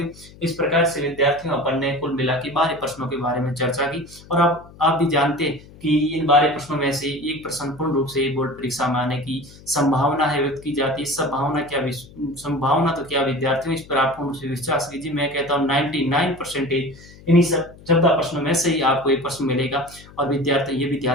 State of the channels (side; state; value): left; noise; hum, 21 dB below the sound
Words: इस प्रकार से विद्यार्थियों अपन ने कुल मिला के 12 प्रश्नों के बारे में चर्चा की और अब आप भी जानते हैं कि इन 12 प्रश्नों में से एक प्रश्न पूर्ण रूप से बोर्ड परीक्षा में आने की संभावना है व्यक्त की जाती है। संभावना तो क्या विद्यार्थियों, इस पर आप पूर्ण रूप से विश्वास कीजिए। मैं कहता हूँ 99% इन्हीं सब 14 प्रश्नों में से ही आपको एक प्रश्न मिलेगा। और विद्यार्थी ये भी